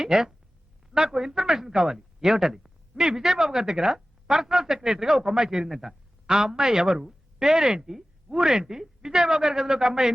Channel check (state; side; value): normal; both; correlation 0.96